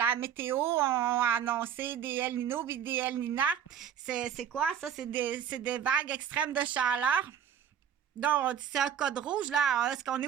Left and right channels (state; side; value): quieter; left; 8.9 dB